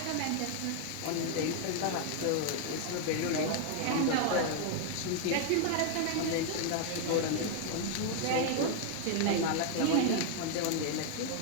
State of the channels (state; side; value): different; both; correlation 0.00